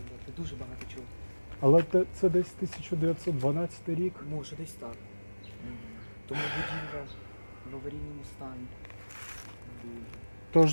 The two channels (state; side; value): inverted; both; correlation -1.00